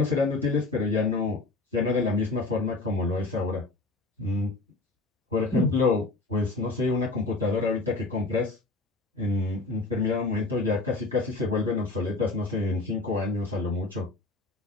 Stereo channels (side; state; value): right; quieter; 3.2 dB